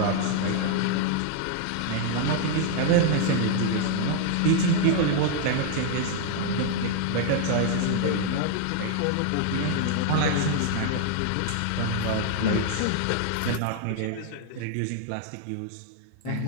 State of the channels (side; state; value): both; different; correlation 0.00